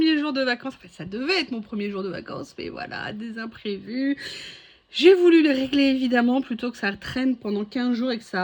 jour de vacances. Enfin, ça devait être mon premier jour de vacances, mais voilà, des imprévus. J'ai voulu les régler, évidemment, plutôt que ça traîne pendant 15 jours et que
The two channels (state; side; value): identical; both; correlation 1.00